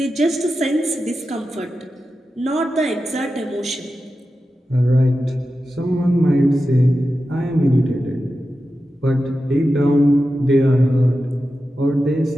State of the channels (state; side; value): normal; both; correlation 0.92